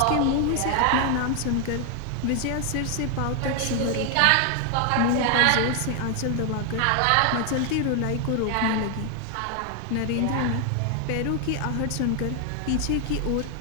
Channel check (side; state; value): both; different; correlation 0.00